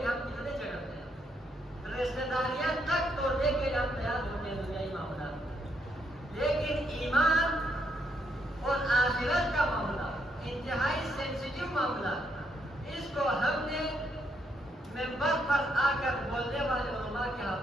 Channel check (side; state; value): both; normal; correlation 0.76